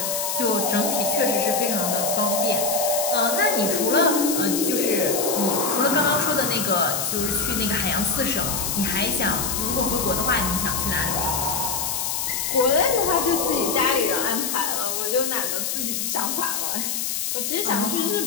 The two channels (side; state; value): left; noise; hiss, 1 dB below the sound